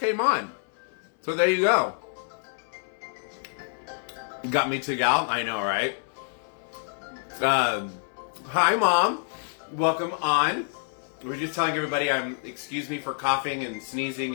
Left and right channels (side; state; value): right; silent; 60 dB below the other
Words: on. So there you go. You got me to gal? I know, right? Hi, Mom. Welcome on. We're just telling everybody excuse me for coughing and sneezing